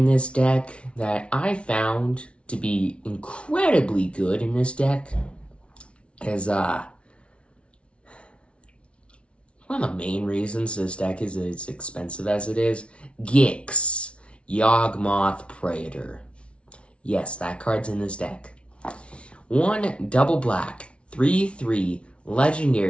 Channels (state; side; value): late; right; 0.060 ms